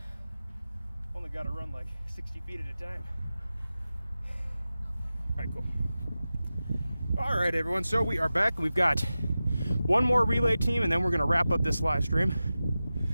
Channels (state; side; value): inverted; both; correlation -0.94